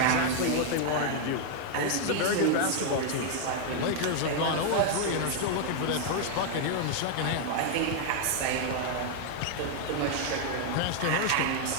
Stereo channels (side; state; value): both; different; correlation 0.00